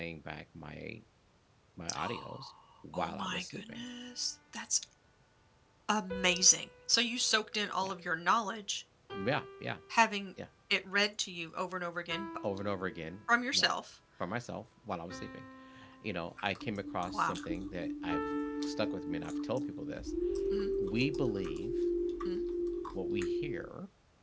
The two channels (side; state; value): both; identical; correlation 1.00